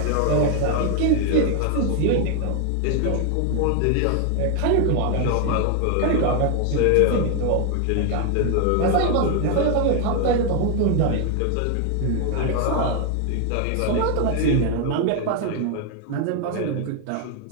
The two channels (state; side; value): different; both; correlation 0.00